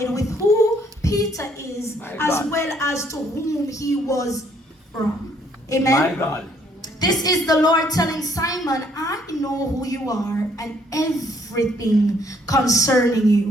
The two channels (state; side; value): normal; both; correlation 0.66